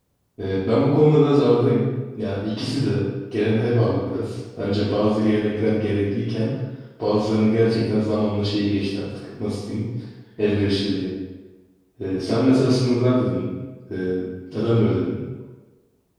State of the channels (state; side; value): identical; both; correlation 1.00